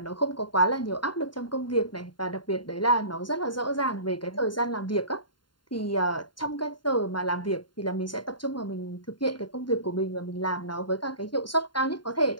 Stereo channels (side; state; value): right; late; 0.72 ms